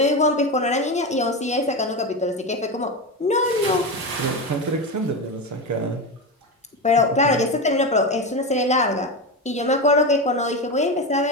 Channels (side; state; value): both; normal; correlation 0.17